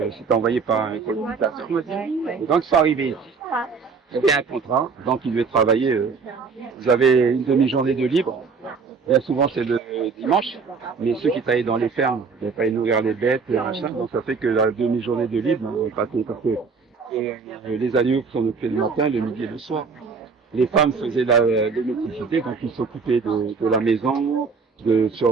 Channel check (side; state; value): left; quieter; 5.1 dB